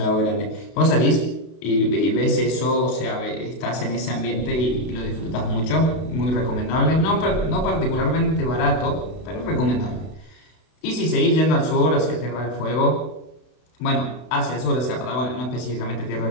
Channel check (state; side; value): late; right; 32 ms